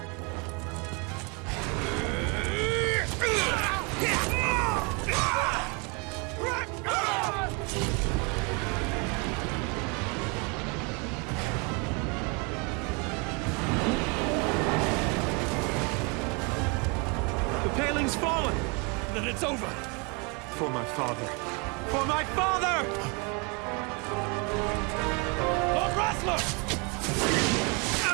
The paling's fallen! Then it's over! For my father! For my father! Lord Wrestler!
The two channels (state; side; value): quieter; left; 31.8 dB